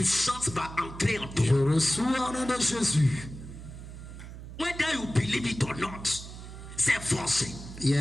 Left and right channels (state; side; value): noise; right; hum, 12 dB below the sound